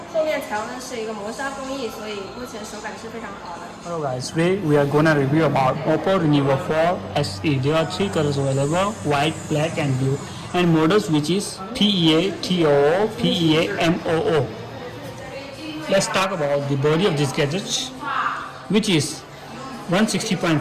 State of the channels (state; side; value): identical; both; correlation 1.00